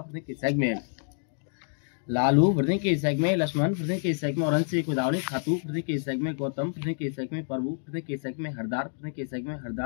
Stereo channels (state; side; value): silent; right; digital silence